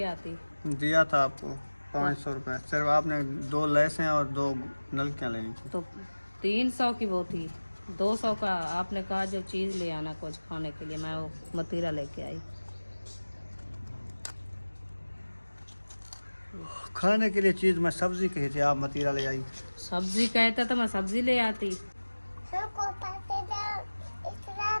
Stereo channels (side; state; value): both; inverted; correlation -1.00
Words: आती। दिया था आपको 500 रुपये, सिर्फ आपने 2 लैसें और 2 नलकियाँ लेनी थी। तो 300 की वो थी, 200 का आपने कहा जो चीज़ ले आना कुछ खाने के लिए, मैं वो मतीरा लेके आई। खाने के लिए चीज़ मैं सब्जी कही थी, आप मतीरा ले आई। सब्जी कहते तो मैं सब्जी ले आती।